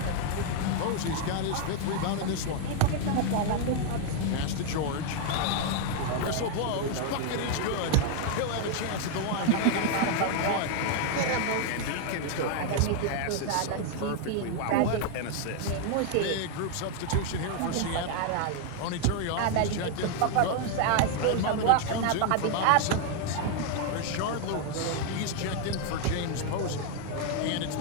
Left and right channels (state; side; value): different; both; correlation 0.00